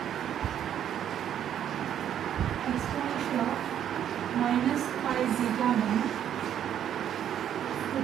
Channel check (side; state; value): left; quieter; 10.0 dB